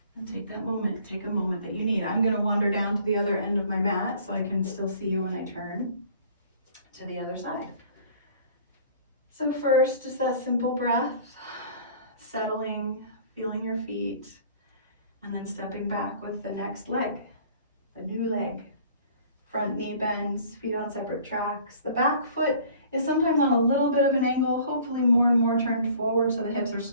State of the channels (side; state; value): both; inverted; correlation -0.51